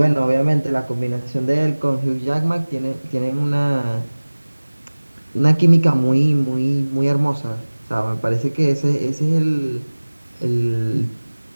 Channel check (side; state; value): both; inverted; correlation -1.00